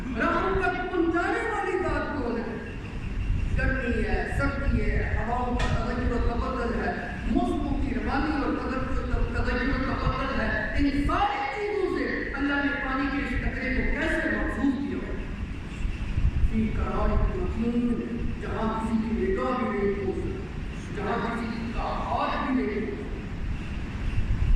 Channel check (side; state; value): both; identical; correlation 1.00